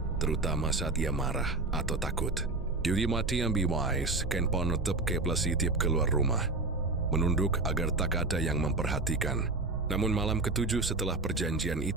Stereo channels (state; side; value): quieter; left; 3.2 dB